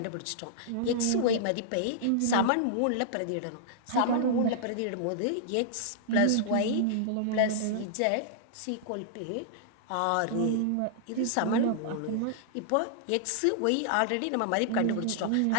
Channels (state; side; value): different; both; correlation -0.01